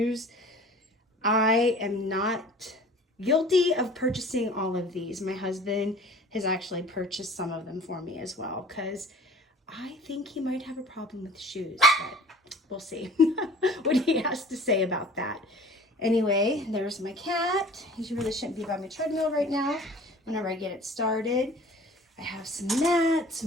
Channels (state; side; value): normal; both; correlation 0.46